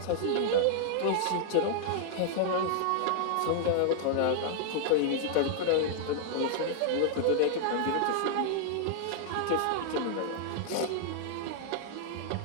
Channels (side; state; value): both; different; correlation -0.01